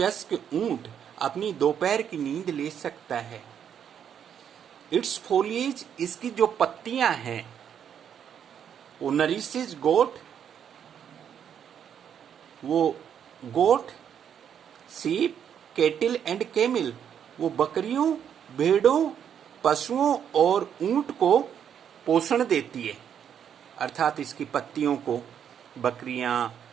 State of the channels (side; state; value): left; quieter; 8.6 dB